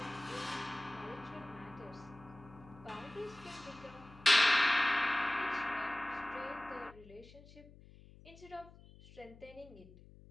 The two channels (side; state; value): left; noise; hum, 21 dB below the sound